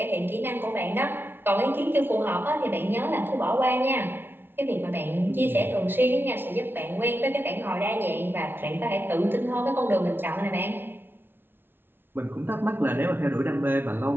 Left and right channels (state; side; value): late; left; 0.10 ms